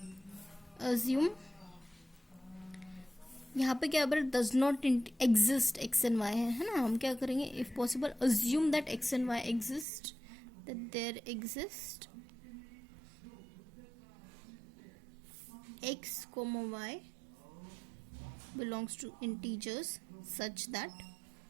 अज्यूम, यहाँ पे क्या पर does not exist X and Y है ना। हम क्या करेंगे, if possible assume that X and Y exist, that there exist x comma y belongs to integers such that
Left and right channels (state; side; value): drops out; left; at 9.9 s